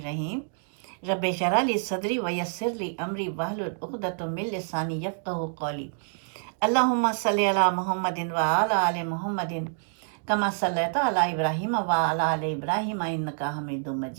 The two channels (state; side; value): silent; left; digital silence